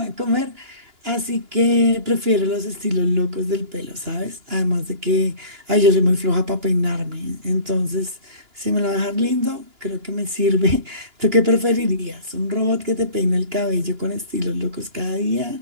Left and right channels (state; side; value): late; left; 2.9 ms